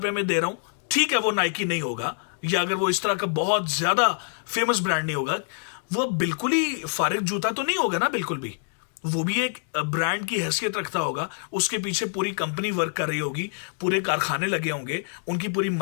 में दे रहा हूं, ठीक है वो नाइकी नहीं होगा, या अगर वो इस तरह का बहुत ज्यादा फेमस ब्रांड नहीं होगा, वो बिल्कुल ही फारिग जूता तो नहीं होगा ना, बिल्कुल भी। वो भी एक ब्रांड की हैसियत रखता होगा, उसके पीछे पूरी कंपनी वर्क कर रही होगी, पूरे कारखाने लगे होंगे, उनकी पूरी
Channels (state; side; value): silent; right; digital silence